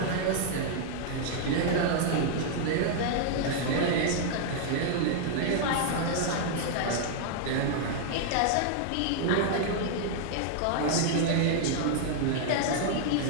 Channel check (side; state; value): both; different; correlation -0.01